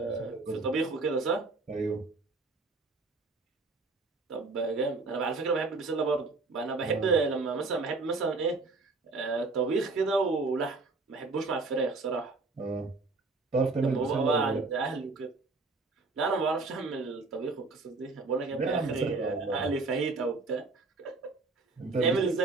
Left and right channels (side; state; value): left; quieter; 3.6 dB